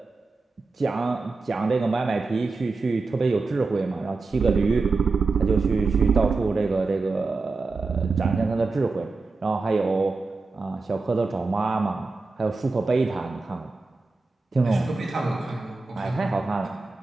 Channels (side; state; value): left; quieter; 3.9 dB